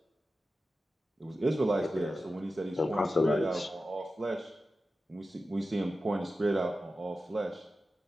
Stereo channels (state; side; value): normal; both; correlation 0.93